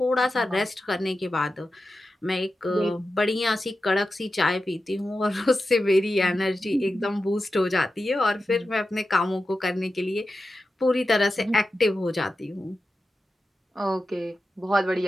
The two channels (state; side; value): normal; both; correlation 0.92